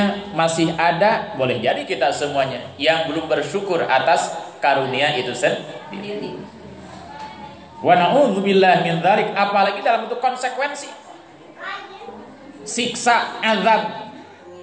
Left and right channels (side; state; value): both; identical; correlation 1.00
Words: masih ada, boleh jadi kita semuanya yang belum bersyukur atas karunia itu sendiri. Wa na'udzubillah min dzalik, apalagi dalam bentuk konsekuensi. Siksa, azab.